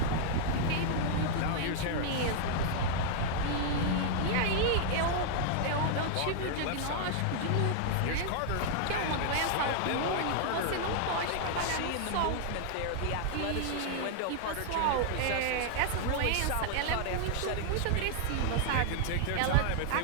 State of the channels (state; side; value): different; both; correlation -0.01